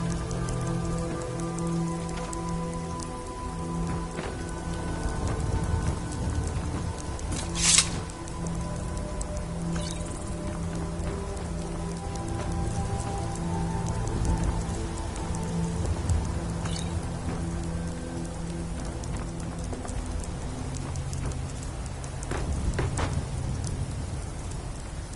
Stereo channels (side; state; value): both; identical; correlation 1.00